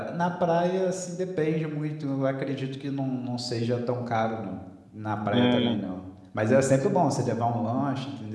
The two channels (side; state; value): both; identical; correlation 1.00